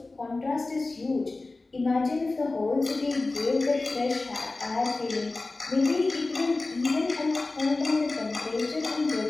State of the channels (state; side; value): quieter; right; 3.3 dB